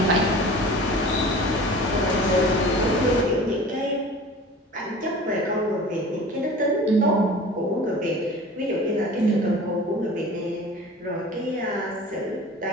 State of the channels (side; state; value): both; normal; correlation 0.40